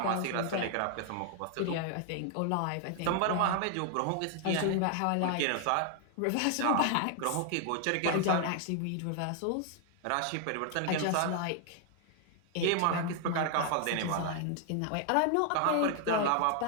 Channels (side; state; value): both; different; correlation 0.00